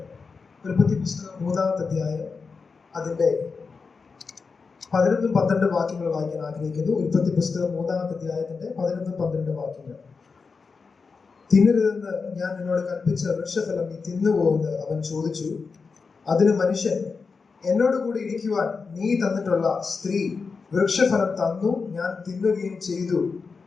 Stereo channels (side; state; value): right; quieter; 4.8 dB